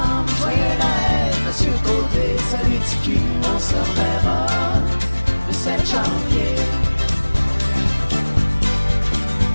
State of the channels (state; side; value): inverted; both; correlation -1.00